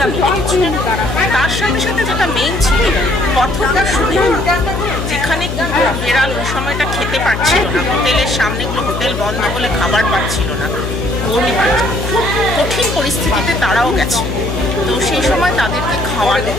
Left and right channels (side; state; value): left; noise; hum, 4 dB below the sound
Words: মিলে কিছু। তার সাথে সাথে যেটা মেইন ছিল পথটার সুবিধা, যেখানে বেড়াল ওই সময়টা খেতে পারছিল না, হোটেলের সামনেগুলো হোটেল বন্ধ বলে খাবার পাচ্ছিল না, খুব কঠিন পরিস্থিতিতে তারাও গেছে। তো সেই সময় তাদেরকে খাওয়ানো,